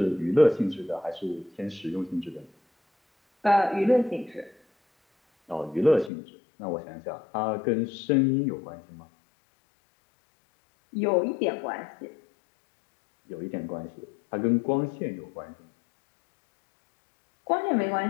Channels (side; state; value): right; drops out; at 6.1 s